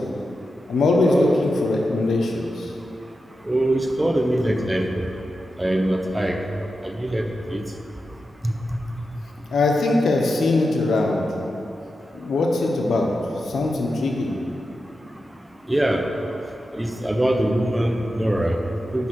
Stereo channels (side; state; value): both; normal; correlation 0.90